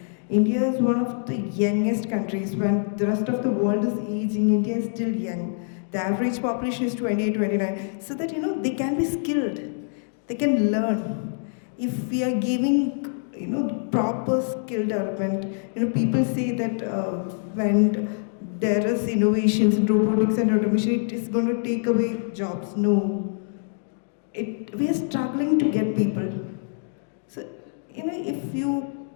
India is one of the youngest countries. When the rest of the world is aging, India is still young. The average population is 28, 29. So that, they can be skilled. They can learn. If we are giving, proper skill development, people say that when there is innovations in robotics and automation, it is going to take away jobs. No. We are struggling to get people. So, if you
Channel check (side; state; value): right; silent; digital silence